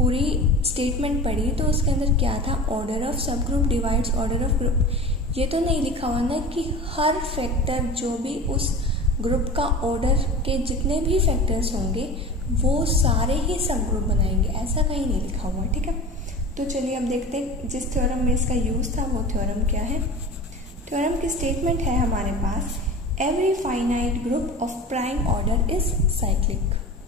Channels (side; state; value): both; normal; correlation 0.34